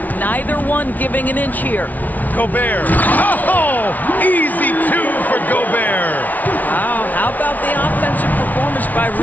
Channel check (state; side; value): late; right; 0.077 ms